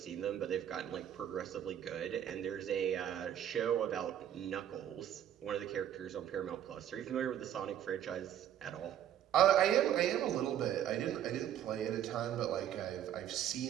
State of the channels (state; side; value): quieter; left; 10.5 dB